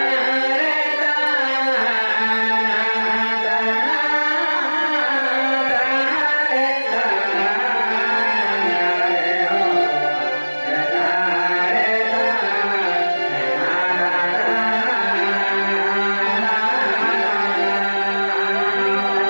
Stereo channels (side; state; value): both; inverted; correlation -1.00